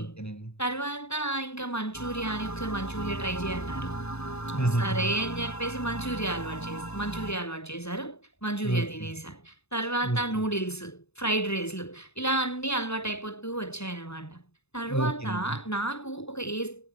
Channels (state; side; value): late; right; 0.80 ms